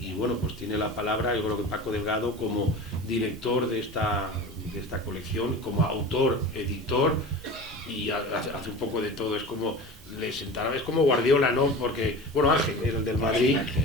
bueno, pues tiene la palabra, yo creo que Paco Delgado, como director de esta colección, como autor, editor, y hace un poco de todo, es como Guardiola, ¿no? Porque, bueno, Ángel, el del Madrid,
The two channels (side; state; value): both; normal; correlation 0.34